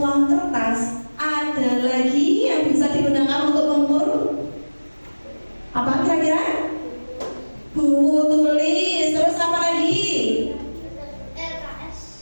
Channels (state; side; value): inverted; both; correlation -1.00